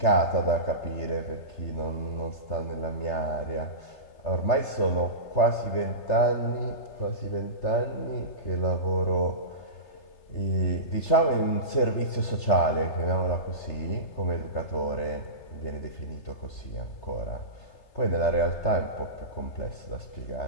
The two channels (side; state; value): right; late; 3.3 ms